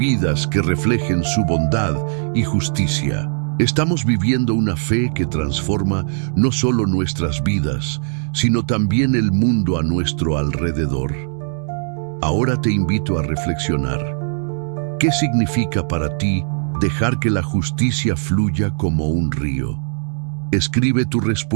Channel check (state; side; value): silent; left; digital silence